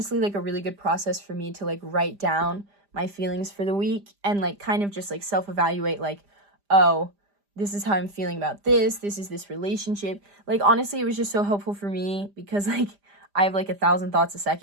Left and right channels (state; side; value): late; left; 5.0 ms